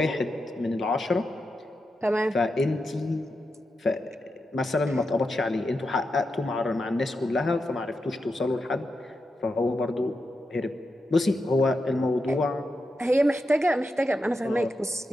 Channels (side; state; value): both; normal; correlation 0.87